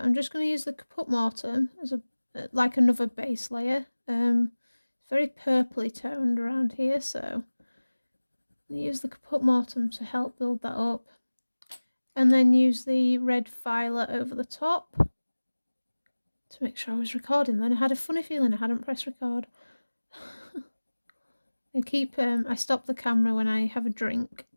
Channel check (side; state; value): both; inverted; correlation -1.00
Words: just going to use the Caput Mortuum as a like another base layer. It's very purpley toned around here, so I'm going to use the Caput Mortuum to help build that up, and then use the red violet over the top to make sure I was recording. Then I had a funny feeling I hadn't pressed record. I stop the camera when I have a drink,